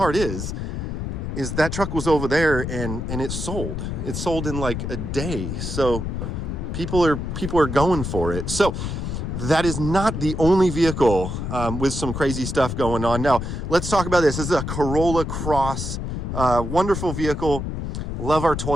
is that truck was over there and it sold. It sold in like a day. So people are going for it. So that is not the only vehicle with some crazy stuff going on. Now, let's talk about this. This is a Corolla Cross, wonderful vehicle. Love our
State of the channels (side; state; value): left; noise; rumble, 4 dB below the sound